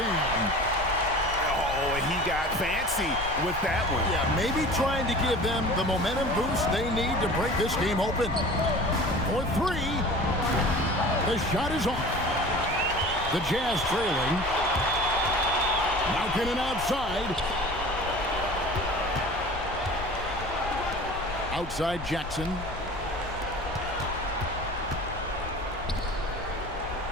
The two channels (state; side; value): noise; left; rumble, 10 dB below the sound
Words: Oh, and he got fancy with that one. Yeah, maybe trying to give them the momentum boost they need to break this game open. For 3. The shot is off. The Jazz trailing. Markkanen outside. Outside Jackson.